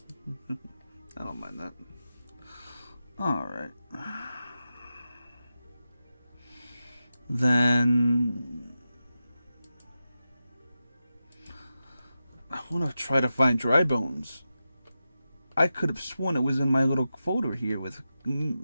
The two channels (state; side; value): inverted; both; correlation -0.91